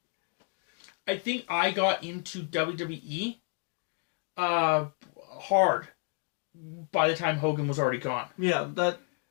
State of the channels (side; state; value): right; quieter; 39.9 dB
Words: I think I got into WWE hard by the time Hogan was already gone. Yeah,